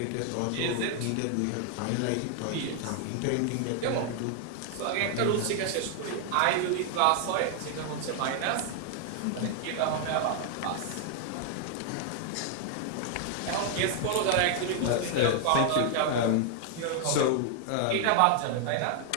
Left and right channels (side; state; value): both; different; correlation 0.00